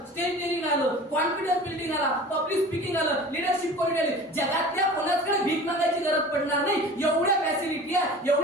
स्टेज डेअरिंग आलं, कॉन्फिडन्स बिल्डिंग आला, पब्लिक स्पीकिंग आलं, लिडरशिप क्वालिटी आली, जगातल्या कोणाकडे भीक मागायची गरज पडणार नाही. एवढ्या फॅसिलिटी आहे,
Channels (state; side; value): normal; both; correlation 0.40